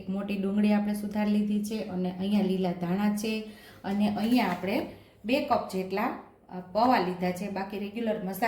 મોટી ડુંગળી આપણે સુધારી લીધી છે, અને અહીંયા લીલા ધાણા છે, અને અહીંયા આપણે 2 કપ જેટલા પૌવા લીધા છે। બાકી રેગ્યુલર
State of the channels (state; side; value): identical; both; correlation 1.00